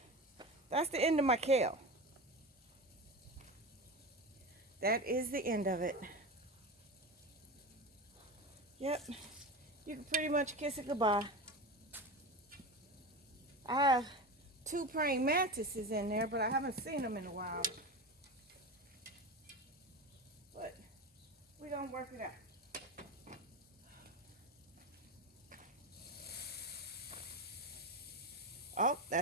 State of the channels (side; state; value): both; normal; correlation 0.25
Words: that's the end of my kale. That is the end of it. Yep, you can pretty much kiss it goodbye. I have 2 praying mantises in there, but I haven't seen them in a while. But we're gonna work it out. Oh,